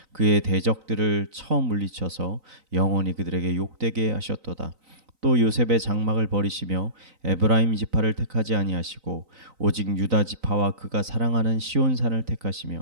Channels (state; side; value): late; left; 3.9 ms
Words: 그의 대적들을 처음 물리쳐서 영원히 그들에게 욕되게 하셨도다. 또 요셉의 장막을 버리시며 에브라임 지파를 택하지 아니하시고 오직 유다 지파와 그가 사랑하는 시온산을